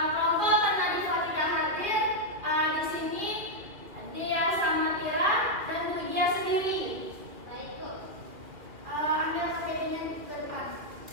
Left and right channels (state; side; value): late; left; 2.7 ms